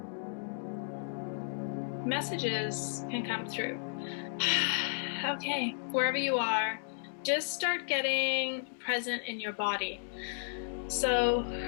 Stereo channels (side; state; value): right; silent; digital silence